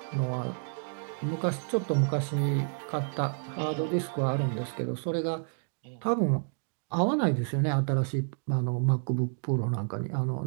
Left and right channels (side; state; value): left; silent; 58 dB below the other